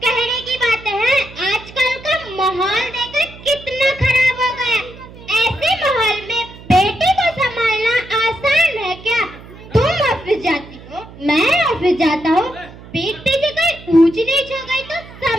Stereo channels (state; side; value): noise; right; hum, 18 dB below the sound